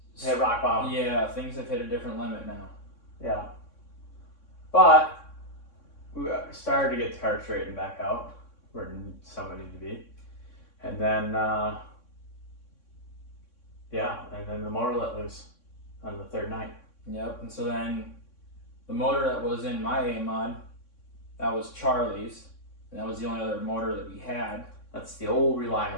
Hit rock bottom. Yeah, things have hit a different limit now. Yeah. But we started to get the car straightened back out where somebody needed to be. And then, and then the motor let loose on the 3rd night. Yep, and so then the motor that was in my A-Mod, that was Charlie's, and that was the only other motor that we had. That's the old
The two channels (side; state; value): right; late; 3.6 ms